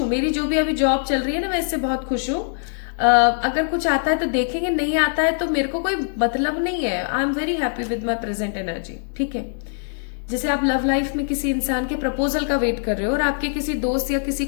मेरी जो भी अभी जॉब चल रही है ना, मैं इससे बहुत खुश हूं। अगर कुछ आता है तो देखेंगे, नहीं आता है तो मेरे को कोई मतलब नहीं है। I am very happy with my present energy. ठीक है, जैसे आप लव लाइफ में किसी इंसान के प्रपोजल का वेट कर रहे हो और आपके किसी दोस्त या किसी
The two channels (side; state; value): right; silent; 63 dB below the other